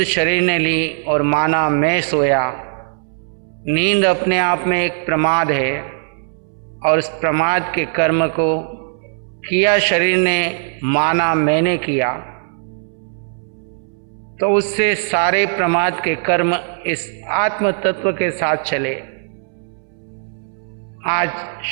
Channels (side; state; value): left; silent; 67 dB below the other